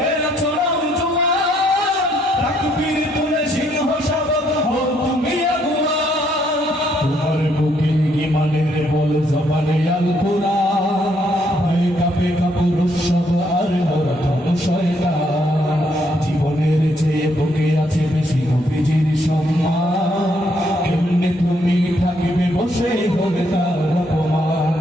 এরা চড়াও জোয়ান তাকবীর তুলে সিংহ শাবক হও তুমি আগুয়ান তোমার বুকে ঈমানের বল জবানে আল কোরআন ভয়ে কাঁপে কাপুর সব আর মোরা ধন শয়তান জীবনের চেয়ে বুকে আছে বেশি নবীজির সম্মান কেমনে তুমি থাকিবে বসে হলে তার অপমান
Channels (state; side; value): normal; both; correlation 0.71